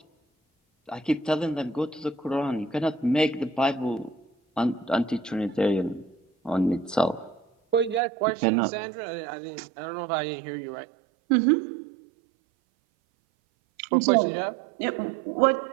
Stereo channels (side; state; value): left; drops out; at 8.0 s